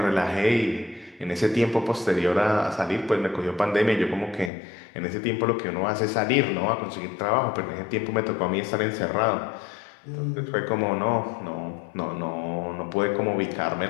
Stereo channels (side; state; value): right; drops out; at 4.5 s